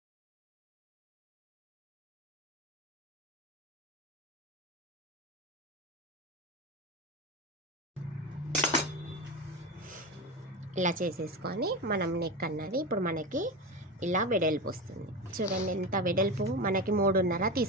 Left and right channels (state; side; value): normal; both; correlation 0.22